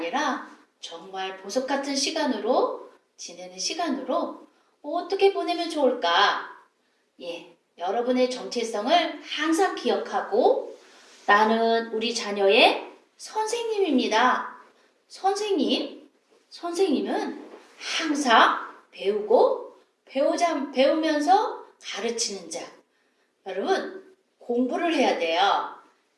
정말 보석 같은 시간으로 지내는 시간으로 어떻게 보내면 좋을까? 여러분의 정체성을 항상 기억하고 나는 우리 자녀의 선생님입니다. 선생님은 항상 배우고 배우면서 가르치는 자. 여러분, 공부를 해야 돼요.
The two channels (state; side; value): identical; both; correlation 1.00